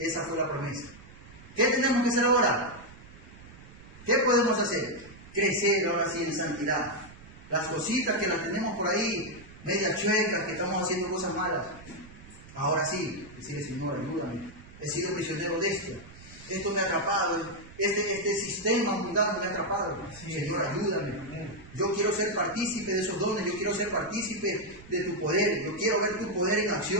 fue la promesa. ¿Qué tenemos que hacer ahora? ¿Qué podemos hacer? Crecer ahora sí en santidad. Las cositas que las tenemos por ahí, medias chuecas, que estamos haciendo cosas malas. Ahora sí, decirle, Señor, ayúdame. He sido prisionero de esto me ha atrapado, este sistema mundano me ha atrapado. Señor, ayúdame. Yo quiero ser partícipe de esos dones, yo quiero ser partícipe de tu poder, yo quiero ver tu poder en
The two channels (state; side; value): noise; right; rumble, 19 dB below the sound